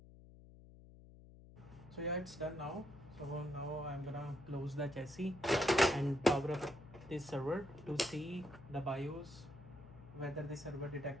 So yeah, it's done now. So now I'm gonna close the chassis and power up this server to see the BIOS, whether the server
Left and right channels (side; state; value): left; noise; hum, 19 dB below the sound